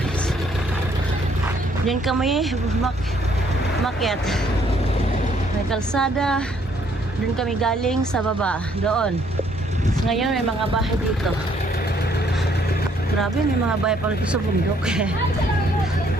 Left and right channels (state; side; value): normal; both; correlation 0.66